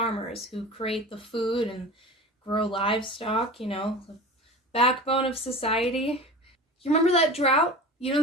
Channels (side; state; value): both; normal; correlation 0.34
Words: who create the food and grow livestock, the backbone of society. You remember that drought? You know